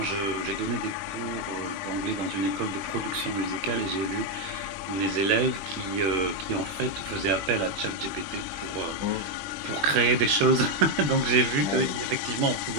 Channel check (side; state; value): left; late; 20 ms